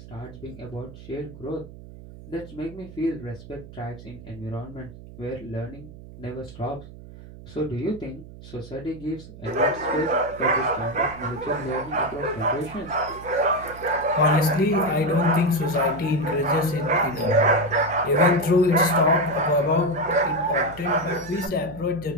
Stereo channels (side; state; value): right; noise; hum, 16 dB below the sound